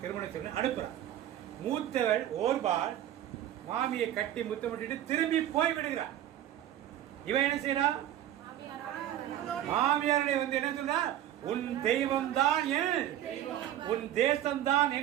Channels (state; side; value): quieter; left; 12.0 dB